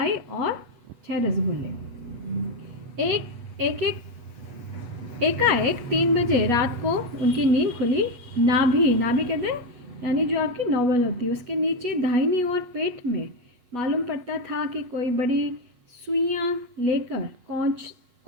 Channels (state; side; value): late; left; 8.2 ms